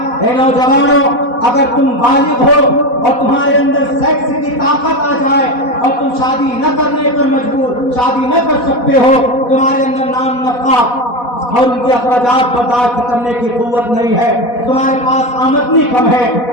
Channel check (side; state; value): right; late; 4.1 ms